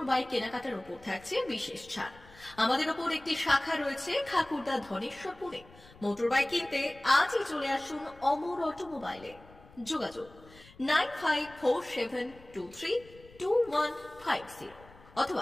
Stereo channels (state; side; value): noise; left; rumble, 23 dB below the sound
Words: বাইক কেনাকাটার উপর থাকছে বিশেষ ছাড়। আমাদের ওপর একটি শাখা রয়েছে খাকুরদা ধনেশ্বরপুরে। মোটর বাইক কিনতে আজই চলে আসুন অমর অটোমোবাইলে। যোগাযোগ 9547232150